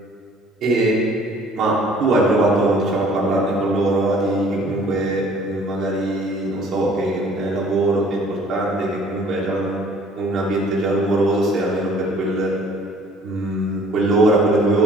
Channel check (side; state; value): both; normal; correlation 0.55